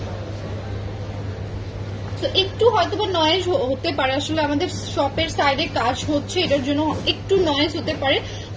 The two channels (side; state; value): both; identical; correlation 1.00